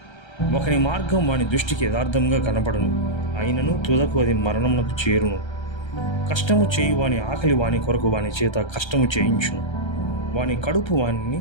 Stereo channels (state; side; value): late; right; 1.3 ms